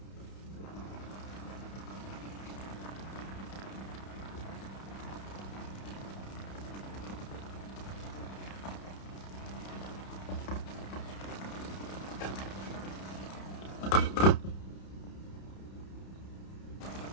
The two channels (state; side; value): late; right; 31 ms